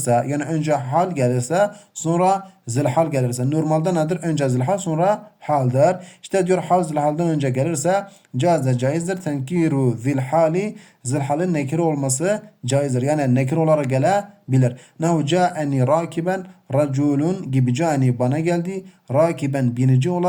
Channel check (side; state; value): both; identical; correlation 1.00